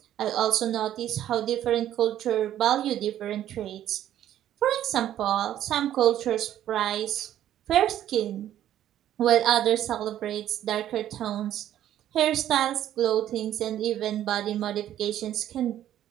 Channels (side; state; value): left; quieter; 11.8 dB